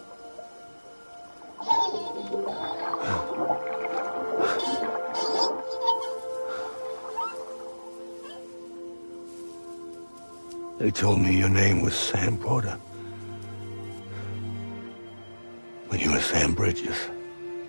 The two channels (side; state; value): both; inverted; correlation -1.00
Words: They told me your name was Sam Porter. But you were Sam Bridges.